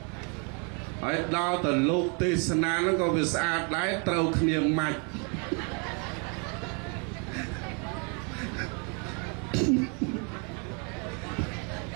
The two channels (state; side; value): quieter; left; 35.8 dB